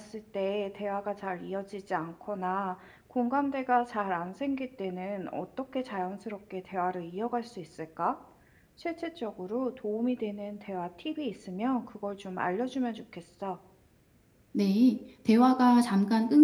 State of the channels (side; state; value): both; identical; correlation 1.00